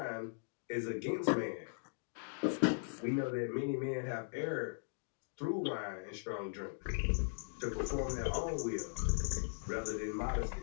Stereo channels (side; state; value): right; silent; digital silence